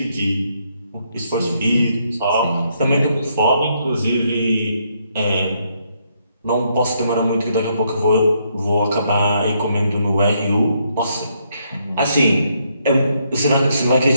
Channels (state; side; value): inverted; both; correlation -0.74